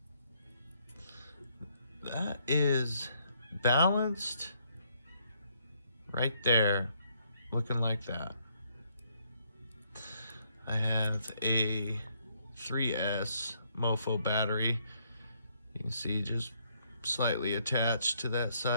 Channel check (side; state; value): both; inverted; correlation -0.71